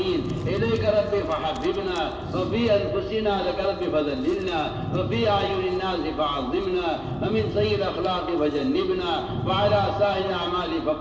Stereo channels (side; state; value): both; identical; correlation 1.00